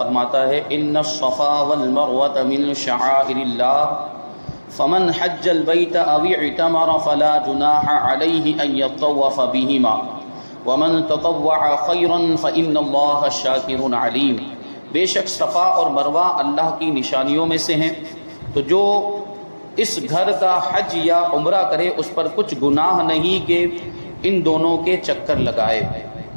فرماتا ہے ان الصفا والمروة من شعائر اللہ فمن حج البيت او اعتمر فلا جناح عليه ان يطوف بهما ومن تطوع خيرا فان الله شاكر عليم۔ بے شک صفا اور مروہ اللہ کی نشانیوں میں سے ہیں، تو جو اس گھر کا حج یا عمرہ کرے اس پر کچھ گناہ نہیں کہ ان دونوں کے چکر لگائے،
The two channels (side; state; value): both; inverted; correlation -1.00